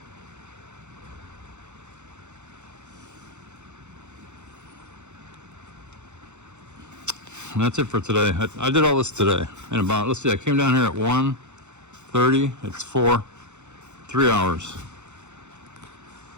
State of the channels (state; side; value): late; left; 0.83 ms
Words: And that's it for today. I did all this today. And about, let's see, I came down here at 1:30. It's 3 hours.